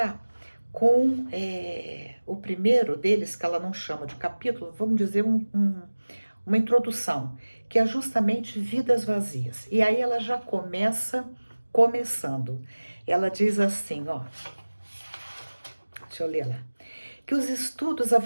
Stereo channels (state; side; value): inverted; both; correlation -1.00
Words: com o primeiro deles, que ela não chama de capítulo, vamos dizer uma introdução, que é justamente Vidas Vazias. E aí ela já começando. Ela diz assim, ó, deixa eu ler lá, que os estudos